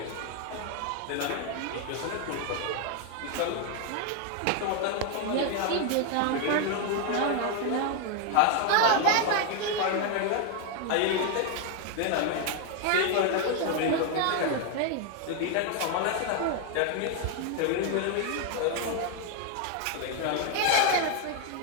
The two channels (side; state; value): both; different; correlation 0.01